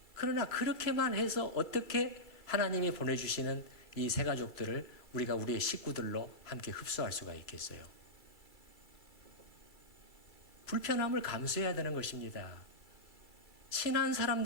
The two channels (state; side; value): late; right; 3.0 ms